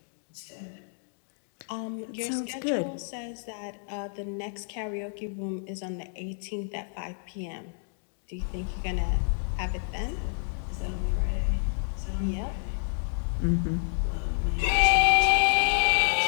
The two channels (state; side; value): silent; right; digital silence